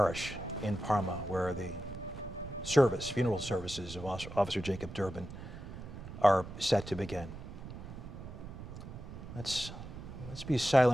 in Parma, where the funeral services of Officer Jacob Derbin are set to begin. Let's be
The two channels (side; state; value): right; noise; rumble, 11 dB below the sound